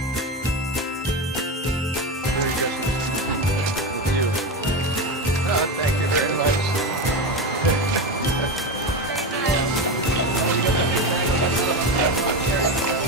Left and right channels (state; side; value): normal; both; correlation 0.19